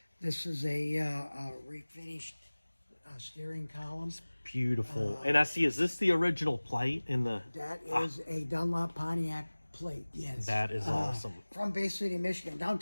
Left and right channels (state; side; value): inverted; both; correlation -1.00